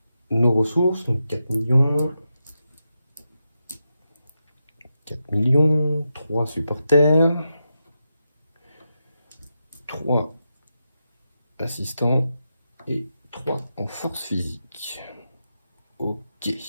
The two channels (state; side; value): inverted; both; correlation -0.88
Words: nos ressources. Donc 4 millions. 4 millions. 3 supporters. 3 assistants. Et 3 en force physique. Ok.